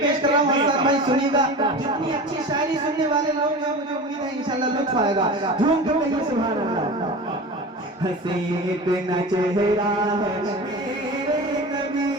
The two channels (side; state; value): both; normal; correlation 0.32